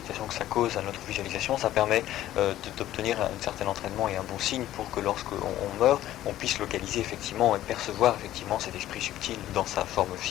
ça cause à notre visualisation, ça permet d'obtenir un certain entraînement et un bon signe pour que lorsqu'on meurt, on puisse localiser effectivement et percevoir effectivement cet esprit subtil dans sa forme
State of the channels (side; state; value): right; quieter; 13.7 dB